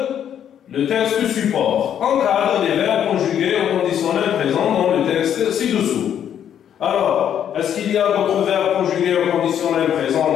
le texte support. Encadre les verbes conjugués au conditionnel présent dans le texte ci-dessous. Alors, est-ce qu'il y a d'autres verbes conjugués au conditionnel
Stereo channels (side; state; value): right; quieter; 9.5 dB